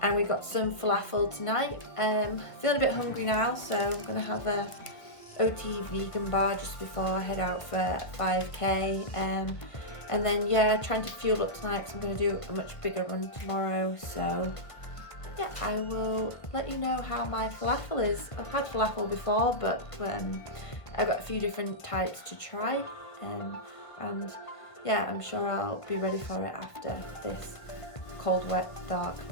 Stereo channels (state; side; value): late; right; 1.6 ms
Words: we got some falafel tonight. Feeling a bit hungry now, so I'm going to have a OTE vegan bar just before I head out for 5k. And then yeah, trying to fuel up tonight because I'm going to do a much bigger run tomorrow. So yeah, I will let you know how my falafel is. I've had falafel before, but I've got a few different types to try, and yeah, I'm sure I'll be ready for it after this cold, wet, dark